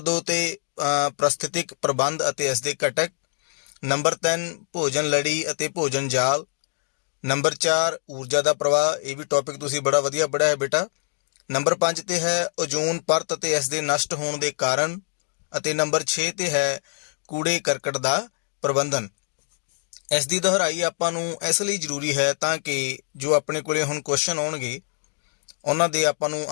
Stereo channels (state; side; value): silent; right; digital silence